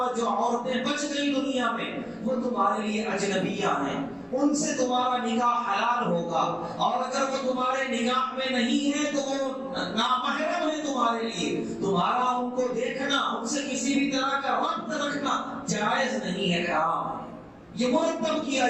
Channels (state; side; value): identical; both; correlation 1.00